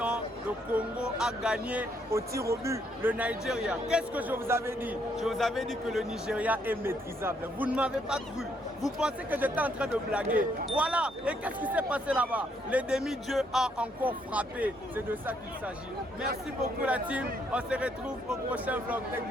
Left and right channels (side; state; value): both; normal; correlation 0.72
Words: Le Congo a gagné au tir au but le Nigeria. Qu'est-ce que je vous avais dit? Je vous avais dit que le Nigeria est maîtrisable. Vous ne m'avez pas cru. Vous pensez que j'étais en train de blaguer. Voilà. Et qu'est-ce qui s'est passé là-bas? Les demi-dieux a encore frappé. C'est de ça qu'il s'agit. Merci beaucoup la team. On se retrouve au prochain vlog. Thank